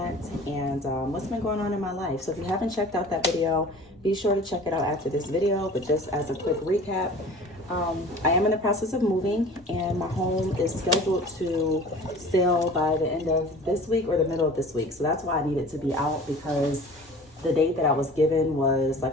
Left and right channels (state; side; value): normal; both; correlation 0.43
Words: and what's been going on in my life. So if you haven't checked out that video, be sure to check it out after this video. But just as a quick recap, I am in the process of moving, and my home is scheduled to sell by the end of this week or the middle of this week. So that's why I needed to be out, because the date that I was given was,